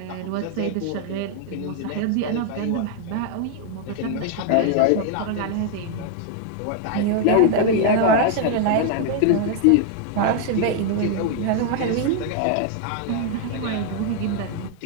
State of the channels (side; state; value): both; different; correlation 0.00